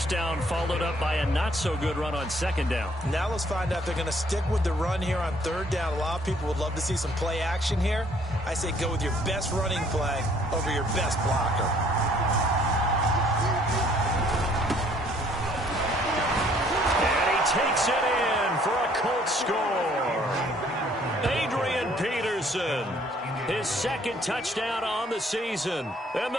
down followed up by a not-so-good run on 2nd down. Now let's find out if they're going to stick with the run here on 3rd down. A lot of people would love to see some play action here. I say go with your best running play over your best blocker. And he takes it in for a Colts score. Adrian Peterson, his 2nd touchdown on the season. And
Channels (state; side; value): normal; both; correlation 0.61